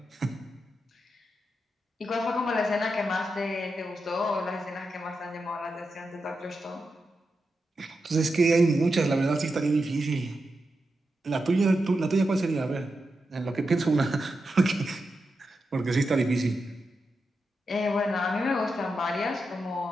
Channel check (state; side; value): normal; both; correlation 0.88